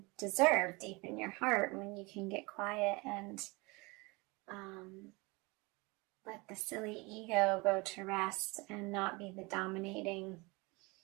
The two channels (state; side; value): quieter; left; 26.0 dB